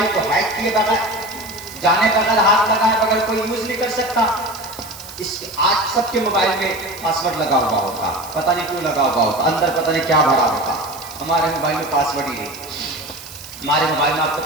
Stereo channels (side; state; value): right; noise; hiss, 16 dB below the sound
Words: کو ہیک کیے بغیر، جانے بغیر، ہاتھ لگائے بغیر کوئی یوز نہیں کر سکتا۔ آج سب کے موبائل میں پاسورڈ لگا ہوا ہوتا، پتہ نہیں کیوں لگا ہوا ہوتا، اندر پتہ نہیں کیا بھرا ہوتا۔ ہمارے موبائل میں پاسورڈ ہی نہیں، ہمارے موبائل میں آپ کو